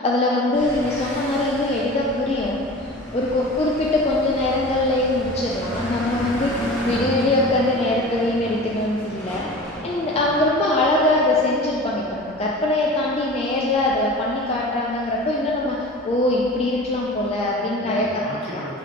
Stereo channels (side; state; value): both; normal; correlation 0.37